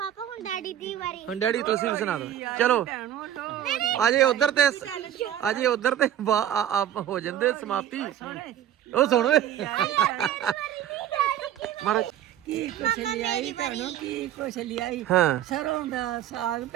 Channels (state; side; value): quieter; left; 11.2 dB